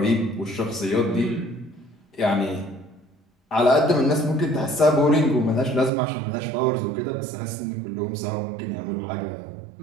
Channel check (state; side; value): drops out; left; at 5.9 s